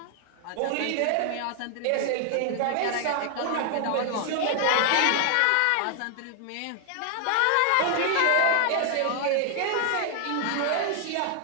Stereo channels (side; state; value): both; different; correlation 0.00